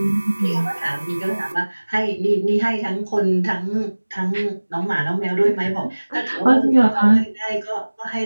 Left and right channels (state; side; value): inverted; both; correlation -1.00